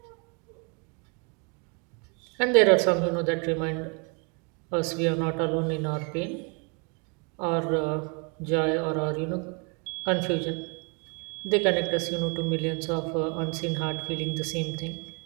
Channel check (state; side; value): quieter; left; 32.6 dB